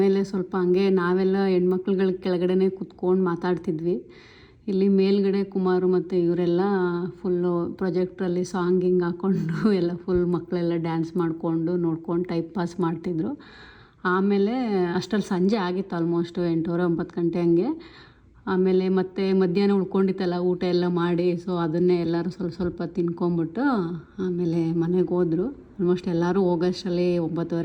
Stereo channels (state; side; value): identical; both; correlation 1.00